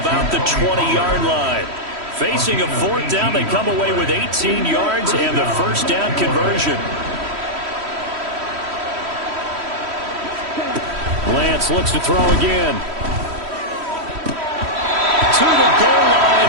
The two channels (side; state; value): left; late; 3.1 ms